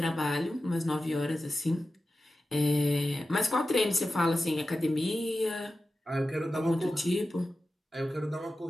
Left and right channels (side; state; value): both; normal; correlation 0.93